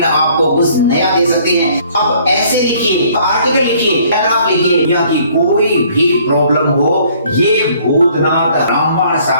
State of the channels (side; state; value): both; inverted; correlation -0.60